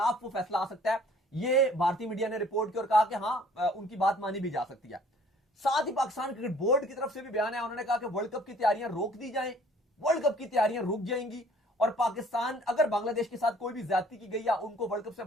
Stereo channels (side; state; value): both; normal; correlation 0.56